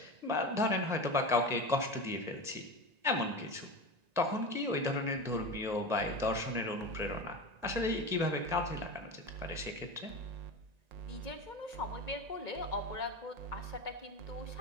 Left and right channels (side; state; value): left; late; 1.9 ms